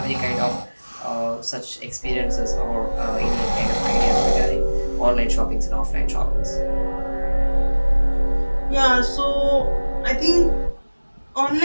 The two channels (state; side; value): inverted; both; correlation -1.00